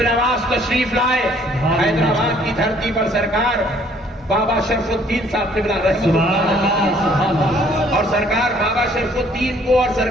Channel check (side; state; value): both; normal; correlation 0.61